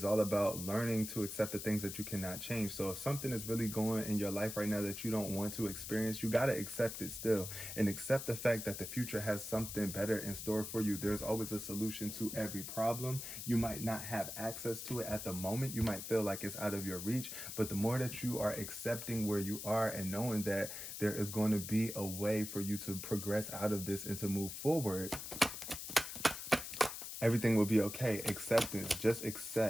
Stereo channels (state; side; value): noise; left; hiss, 8 dB below the sound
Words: all about learning to accept the things that you cannot change. So if something is really going in your life right now that you don't want to experience, you got to accept it still, and accept the fact that the future has something better in store for you. There's always a solution to every problem. You might not have access to it at the moment. You might feel like it's out of your reach, but the more that you are accepting where you are and knowing that there is going to be a way for you to progress out of this and to move forward, everything will be okay. Acceptance. Just